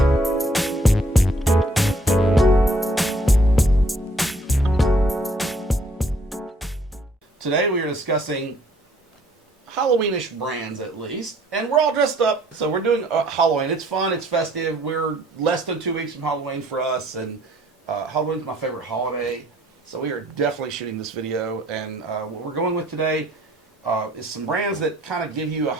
Today we are discussing Halloweenish brands, at least, and we're all dressed up, so we're doing Halloween. It's fun, it's festive. We're less than 2 weeks from Halloween for us, and Halloween's my favorite holiday, so we are definitely shooting this video. And what we're going with today is some brands that kind of give you a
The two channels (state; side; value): normal; both; correlation 0.62